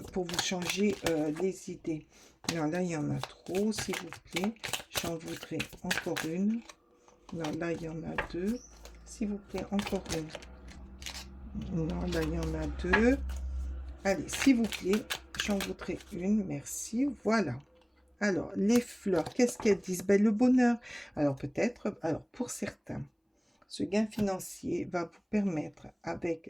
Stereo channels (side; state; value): both; identical; correlation 1.00